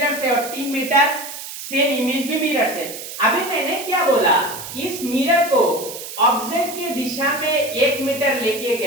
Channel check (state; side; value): noise; right; hiss, 10 dB below the sound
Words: से और 3 मीटर सेम इमेज भी मिरर से। अभी मैंने क्या बोला, इस मिरर को ऑब्जेक्ट की दिशा में 1 मीटर लेके